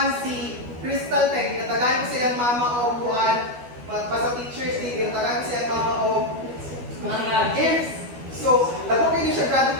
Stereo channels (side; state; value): left; late; 12 ms